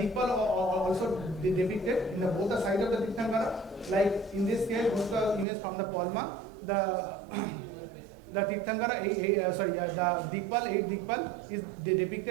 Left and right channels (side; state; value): left; drops out; at 5.5 s